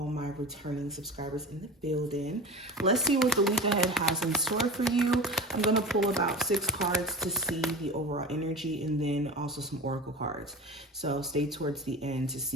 my returning subscribers in the building. Let's see what the week ahead has in store for you. I'm going to pull about 6 cards to see the overall energy and then also some oracle cards. So stay towards the end to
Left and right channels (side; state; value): both; normal; correlation 0.31